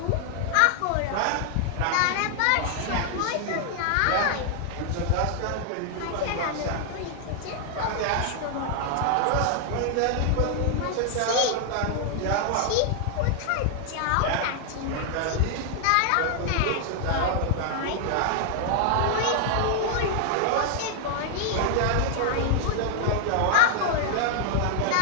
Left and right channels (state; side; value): different; both; correlation 0.00